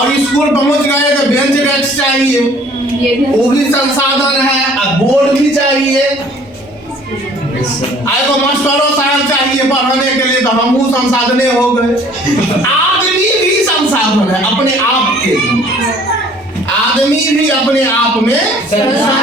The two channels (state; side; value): normal; both; correlation 0.54